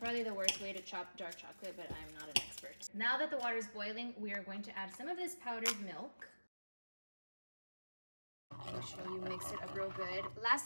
the worst way to chop dark chocolate, but I'm not an expert. Now that the water is boiling, we are going to add some of this powdered milk. Make sure you mix it up real good.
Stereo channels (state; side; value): inverted; both; correlation -1.00